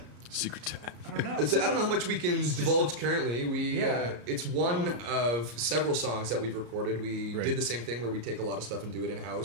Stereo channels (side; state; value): left; late; 34 ms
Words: Secret time. I don't know. I don't know how much we can divulge currently. Yeah. It's one of several songs that we've recorded. We Right. did the same thing where we take a lot of stuff and do it in